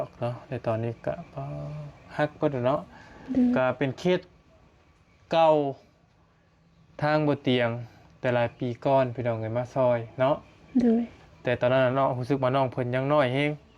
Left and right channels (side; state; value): both; identical; correlation 1.00